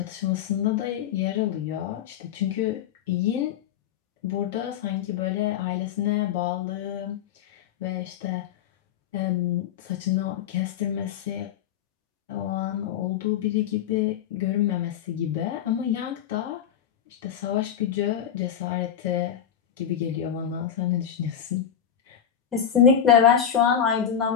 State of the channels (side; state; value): right; quieter; 9.2 dB